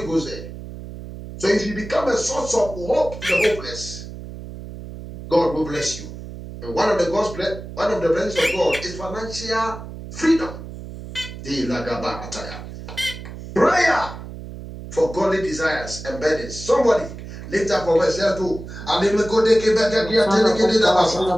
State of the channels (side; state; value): right; noise; hum, 12 dB below the sound